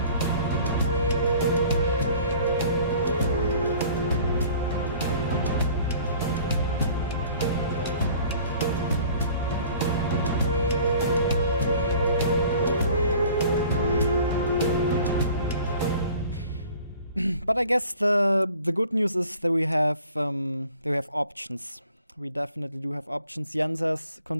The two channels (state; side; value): inverted; both; correlation -0.50